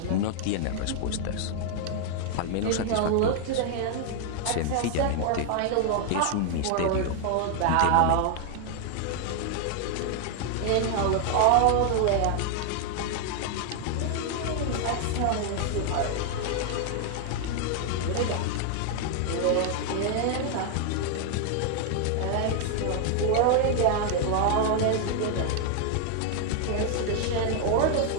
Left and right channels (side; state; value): both; different; correlation 0.00